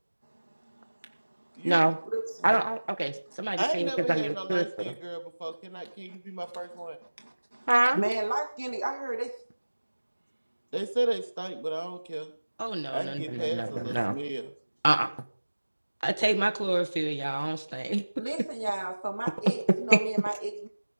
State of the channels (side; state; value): both; inverted; correlation -1.00